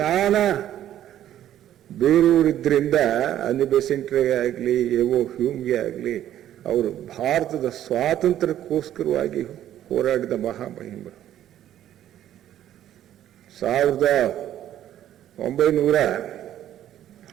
ಬೇರೆಯವರಿದ್ರಿಂದ ಅನಿ ಬೆಸೆಂಟ್ಗೆ ಆಗಲಿ, ಎವೋ ಹ್ಯೂಮ್ಗೆ ಆಗಲಿ, ಅವರು ಭಾರತದ ಸ್ವಾತಂತ್ರ್ಯಕ್ಕೋಸ್ಕರವಾಗಿ ಹೋರಾಡಿದ ಮಹಾಮಹಿಮರು.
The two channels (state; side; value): quieter; left; 11.8 dB